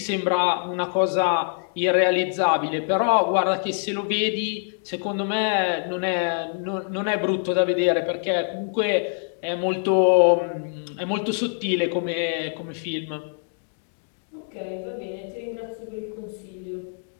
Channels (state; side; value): silent; right; 59 dB below the other